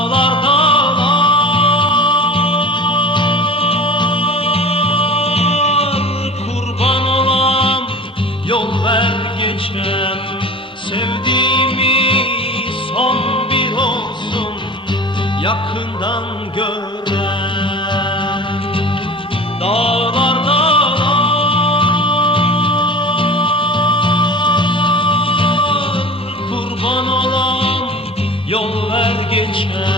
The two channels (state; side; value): normal; both; correlation 0.38